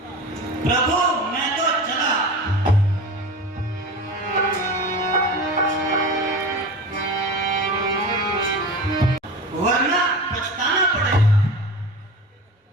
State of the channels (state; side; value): normal; both; correlation 0.31